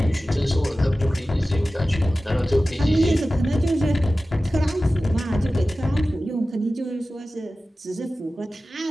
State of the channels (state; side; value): normal; both; correlation 0.96